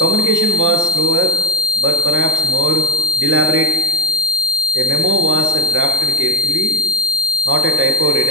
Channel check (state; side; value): normal; both; correlation 0.29